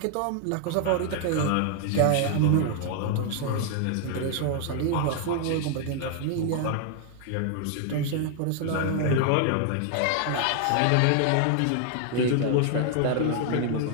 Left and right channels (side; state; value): both; different; correlation 0.00